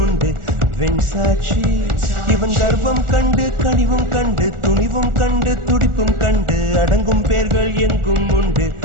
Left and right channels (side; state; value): left; late; 1.4 ms